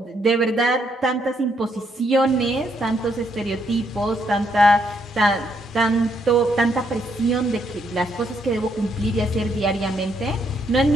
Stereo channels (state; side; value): normal; both; correlation 0.74